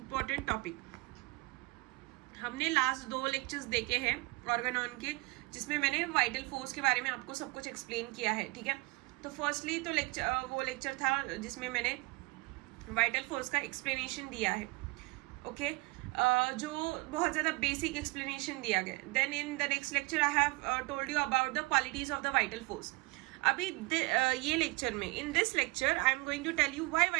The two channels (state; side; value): quieter; left; 24.9 dB